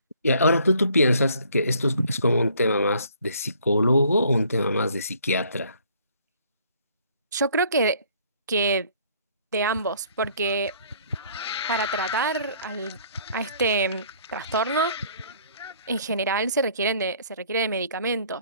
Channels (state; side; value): inverted; both; correlation -0.59